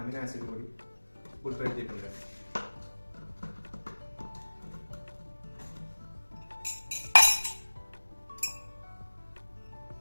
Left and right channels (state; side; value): inverted; both; correlation -1.00